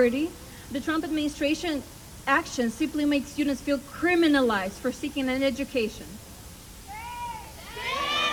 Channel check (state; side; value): identical; both; correlation 1.00